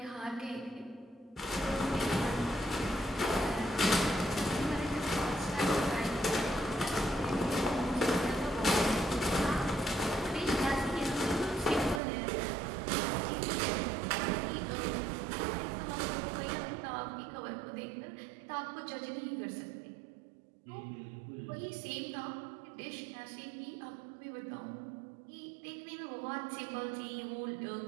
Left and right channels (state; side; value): drops out; left; at 12.0 s